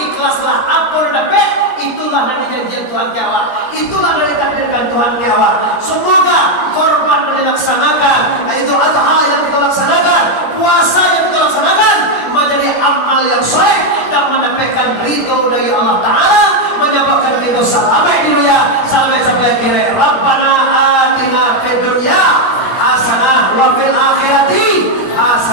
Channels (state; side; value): late; right; 17 ms